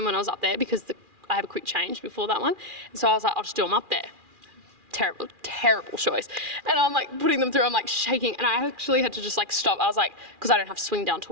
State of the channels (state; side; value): late; left; 2.4 ms